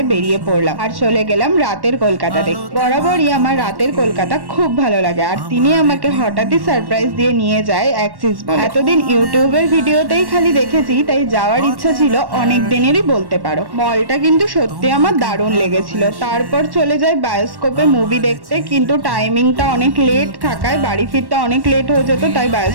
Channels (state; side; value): late; left; 1.1 ms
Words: বেরিয়ে পড়লাম আর চলে গেলাম রাতের কলকাতা দেখতে। বরাবরই আমার রাতের কলকাতা খুব ভালো লাগে, আর তিনি আমাকে হঠাৎই সারপ্রাইজ দিয়ে নিয়ে যায় অ্যাক্সিস মলে। এতদিন ইউটিউবের ভিডিওতেই খালি দেখেছি, তাই যাওয়ার ইচ্ছা ছিল অনেক দিনেরই বলতে পারো। মলটা কিন্তু সত্যি আমার দারুণ লেগেছিল। তারপর চলে যায় বায়োস্কোপে মুভি দেখতে, কিন্তু টাইমিংটা অনেক লেট থাকায় বাড়ি ফিরতে অনেক লেট হয়ে যেত, তাই